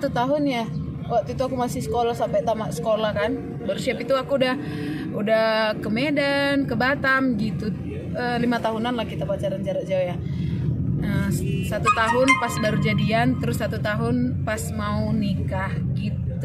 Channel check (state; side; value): identical; both; correlation 1.00